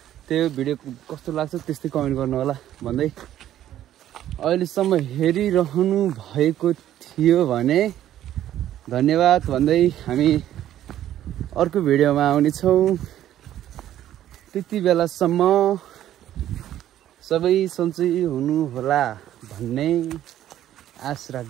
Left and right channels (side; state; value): left; quieter; 12.1 dB